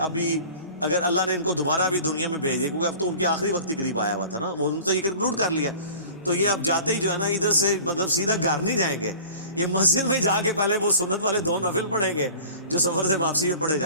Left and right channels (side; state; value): both; inverted; correlation -0.43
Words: اگر اللہ نے ان کو دوبارہ بھی دنیا میں بھیج دیا, کیونکہ اب تو ان کے آخری وقت ہی قریب آیا ہوا تھا نا, وہ انہوں نے تو یہ کنکلوڈ کر لیا, تو یہ اب جاتے ہی جو ہے نا ادھر سے مطلب سیدھا گھر نہیں جائیں گے, یہ مسجد میں جا کے پہلے وہ سنت والے 2 نفل پڑھیں گے جو سفر سے واپسی میں پڑھے